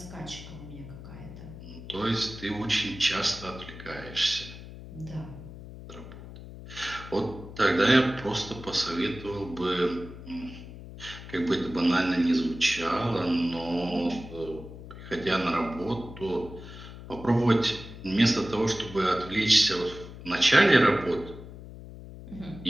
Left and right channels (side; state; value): left; noise; hum, 14 dB below the sound